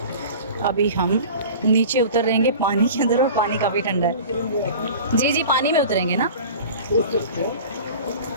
अभी हम नीचे उतर रहेंगे पानी के अंदर, और पानी काफी ठंडा है। जी जी पानी में उतरेंगे ना।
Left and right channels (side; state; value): both; inverted; correlation -0.39